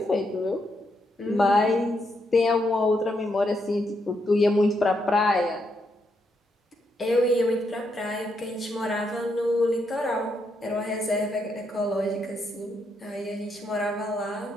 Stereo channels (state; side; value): normal; both; correlation 0.79